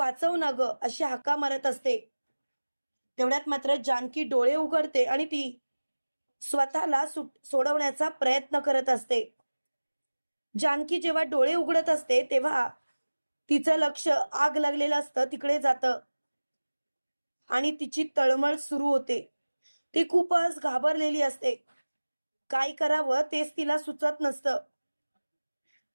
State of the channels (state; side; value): inverted; both; correlation -1.00